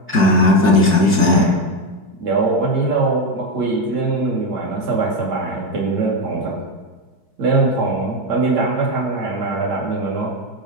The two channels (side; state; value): left; late; 4.6 ms